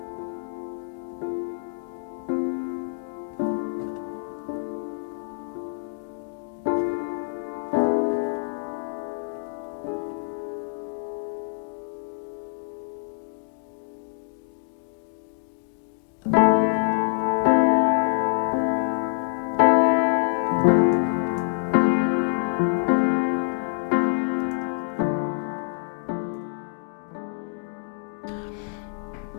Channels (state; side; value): silent; right; digital silence